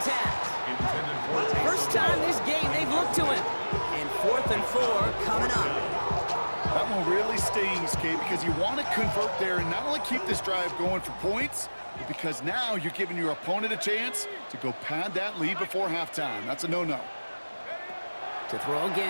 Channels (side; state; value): both; inverted; correlation -1.00